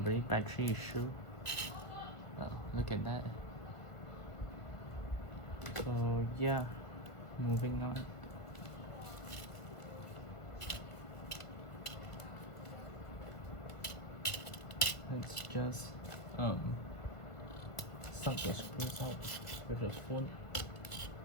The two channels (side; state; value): right; late; 1.6 ms